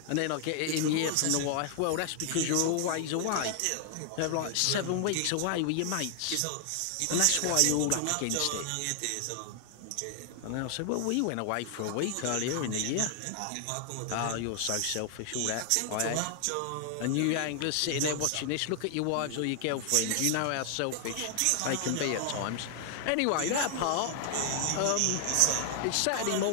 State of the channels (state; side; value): different; both; correlation 0.00